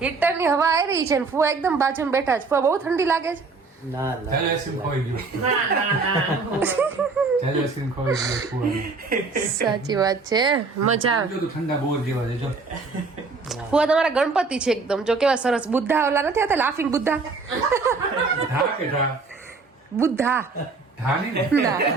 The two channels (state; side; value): quieter; left; 4.2 dB